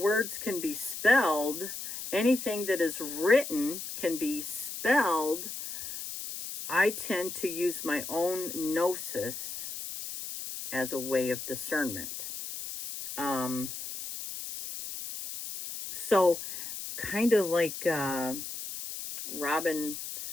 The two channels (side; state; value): left; noise; hiss, 8 dB below the sound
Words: can be spelled, anything that is written can be spelled, I tend to use my own gnosis as a way of discernment. So kind of like Robin